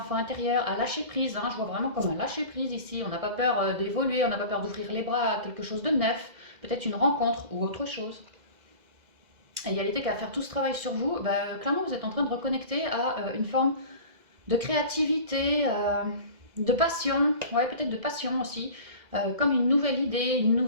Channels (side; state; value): left; late; 2.0 ms